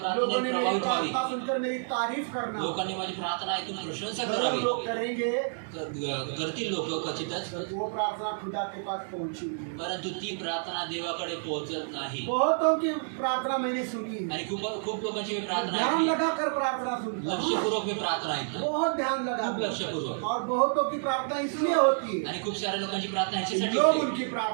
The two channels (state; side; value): silent; left; digital silence